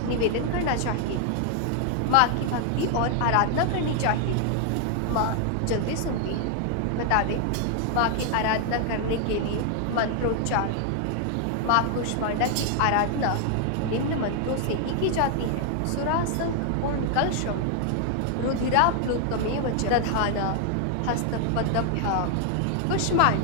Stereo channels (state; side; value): different; both; correlation 0.00